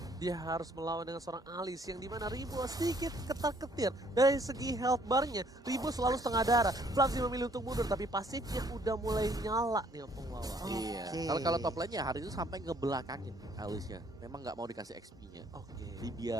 Dia harus melawan dengan seorang Alice yang dimana Ribo sedikit ketar-ketir. Dari segi health bar-nya, Ribo selalu setengah darah. Flamsy memilih untuk mundur, tapi pasifnya udah mulai nyala nih Opung Wawa. Iya. Kalau top lane-nya hari itu sampai ngebelakangin Alice-nya. Memang nggak mau dikasih XP-nya. Oke.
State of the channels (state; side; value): normal; both; correlation 0.63